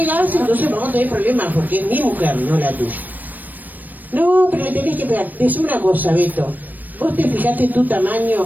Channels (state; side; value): late; left; 0.087 ms